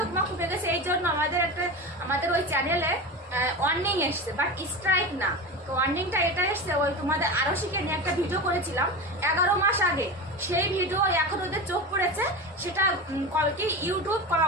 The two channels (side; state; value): both; normal; correlation 0.26